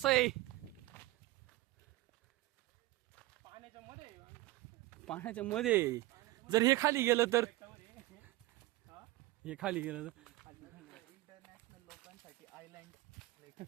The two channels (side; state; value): left; quieter; 18.5 dB